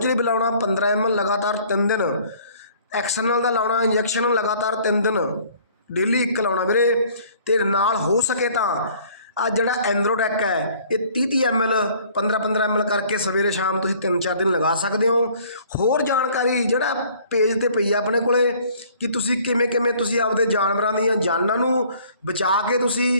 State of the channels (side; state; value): both; inverted; correlation -0.55